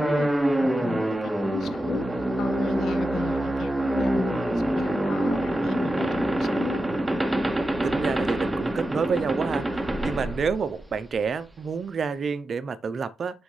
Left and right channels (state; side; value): normal; both; correlation 0.91